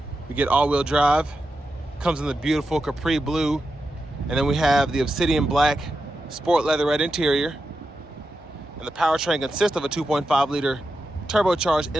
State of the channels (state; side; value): normal; both; correlation 0.89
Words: We get all-wheel drive. Comes in the beautiful Capri blue. And then we have the obsidian black sport leatherette interior. And the powertrain consists of a 2.5-liter turbocharged